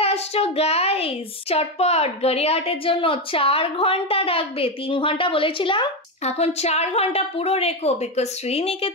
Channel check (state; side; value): normal; both; correlation 0.11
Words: আসছো গাইস, চটপট গড়িয়াহাটের জন্য 4 ঘন্টা রাখবে। 3 ঘন্টা বলেছিলাম, এখন 4 ঘন্টা পুরো রেখো, বিকজ